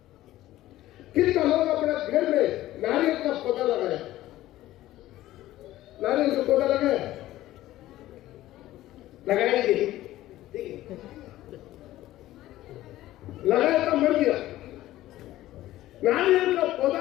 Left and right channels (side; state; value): right; quieter; 15.2 dB